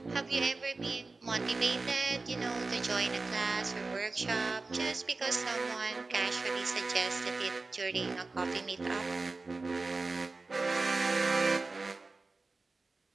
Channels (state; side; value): quieter; left; 3.6 dB